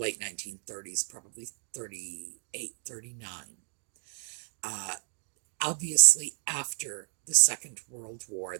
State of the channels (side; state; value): left; silent; 57 dB below the other